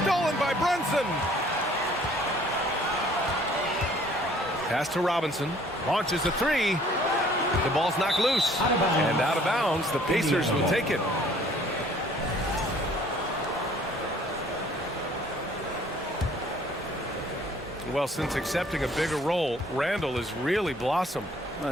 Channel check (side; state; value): both; normal; correlation 0.57